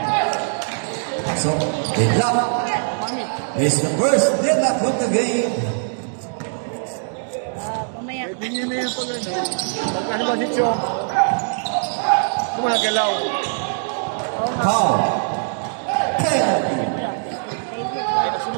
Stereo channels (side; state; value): left; silent; 64 dB below the other